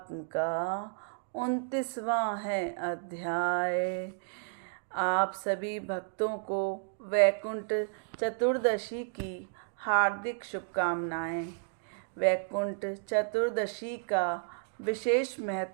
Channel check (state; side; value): silent; left; digital silence